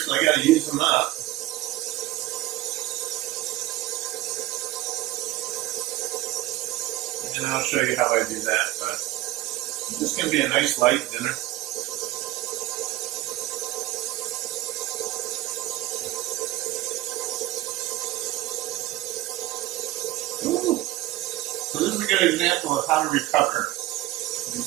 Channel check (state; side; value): quieter; left; 16.8 dB